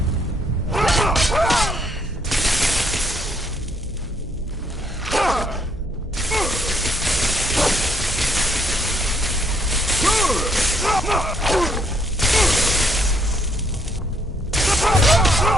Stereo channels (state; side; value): normal; both; correlation 0.69